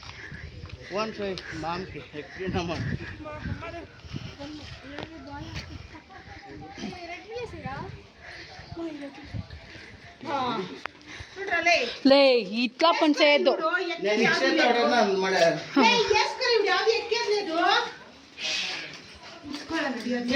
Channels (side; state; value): both; identical; correlation 1.00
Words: ఫోన్ చేయి మామకి ఎక్కినామా. లే ఇట్లా పని చేయొద్దు. నేను ఇచ్చేటోడన్నా మరి